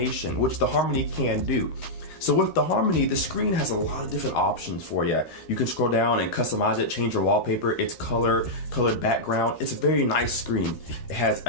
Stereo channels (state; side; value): late; right; 13 ms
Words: which the Harmony can do. So with the Harmony, the screen has a lot of different options for you. You can scroll down and customize it, change your wallpaper, its colored background. It's a very nice screen. It has